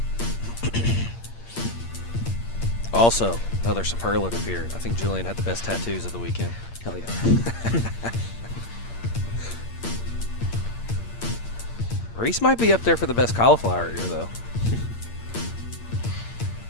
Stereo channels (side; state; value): right; late; 8.7 ms